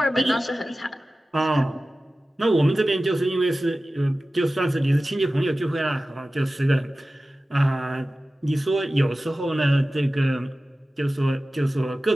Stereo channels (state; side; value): normal; both; correlation 0.96